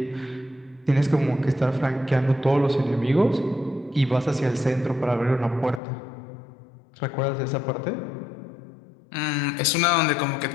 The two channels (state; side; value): drops out; right; at 5.8 s